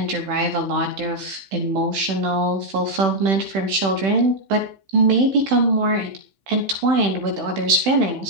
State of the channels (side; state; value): left; late; 16 ms